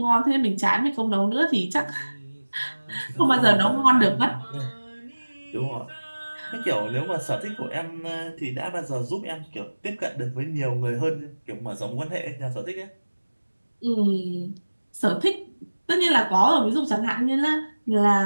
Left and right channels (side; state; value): both; inverted; correlation -1.00